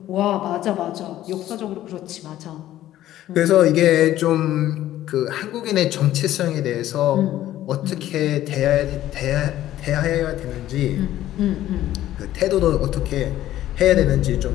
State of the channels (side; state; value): right; quieter; 13.5 dB